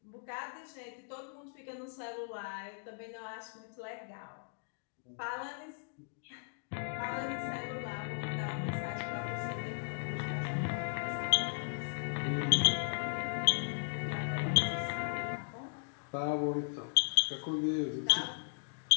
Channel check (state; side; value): silent; right; digital silence